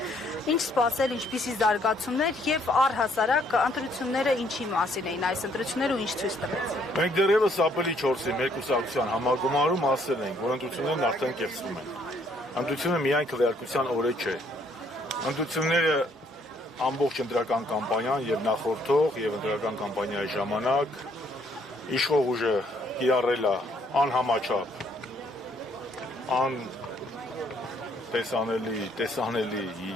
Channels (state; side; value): normal; both; correlation 0.67